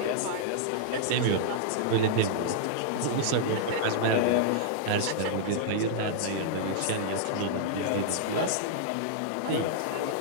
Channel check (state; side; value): different; both; correlation -0.02